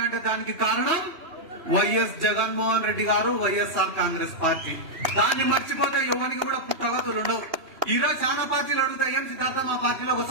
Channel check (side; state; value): left; late; 3.1 ms